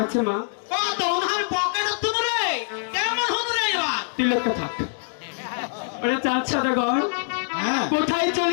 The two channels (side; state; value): right; silent; digital silence